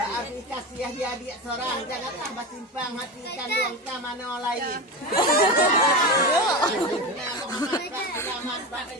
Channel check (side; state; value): both; normal; correlation 0.22